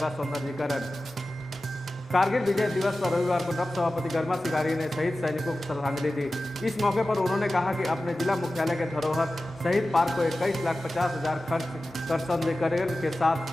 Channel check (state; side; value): normal; both; correlation 0.95